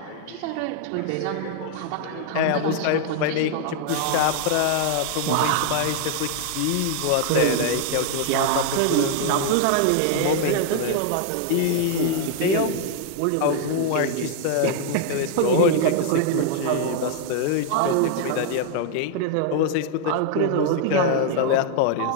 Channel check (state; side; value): different; both; correlation 0.00